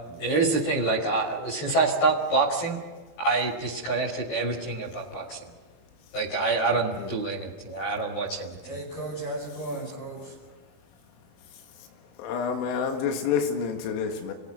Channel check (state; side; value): late; right; 23 ms